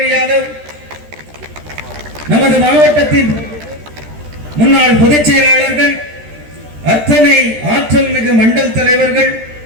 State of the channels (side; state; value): left; late; 13 ms